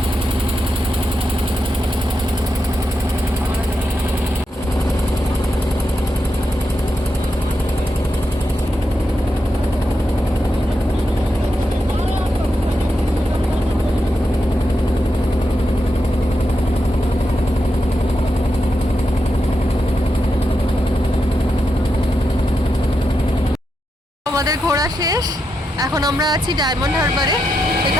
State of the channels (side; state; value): both; normal; correlation 0.86